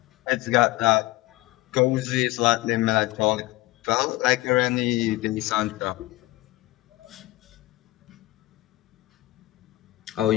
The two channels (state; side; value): quieter; right; 19.1 dB